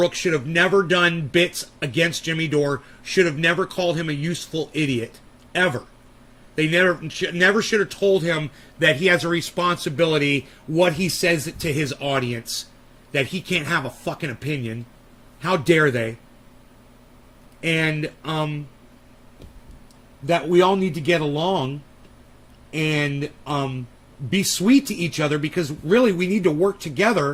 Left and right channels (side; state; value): both; identical; correlation 1.00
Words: should have never done bits against Jimmy Dore, should have never called him a useful idiot, ever. They never should have told him that he has a responsibility, what he says to his audience, that he can't have a fucking opinion. How dare they? And that we all need to get along and be sweet to each other, because really we need to work